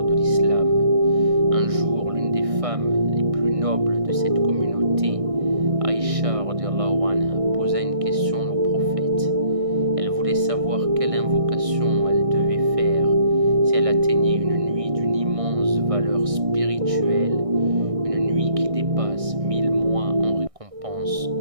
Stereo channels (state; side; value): late; left; 1.6 ms